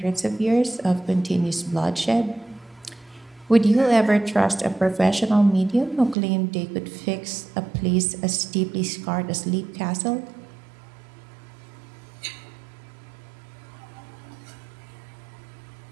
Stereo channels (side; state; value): left; drops out; at 6.2 s